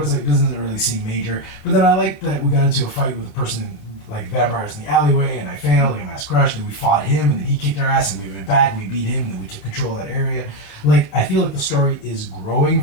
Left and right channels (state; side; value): late; right; 29 ms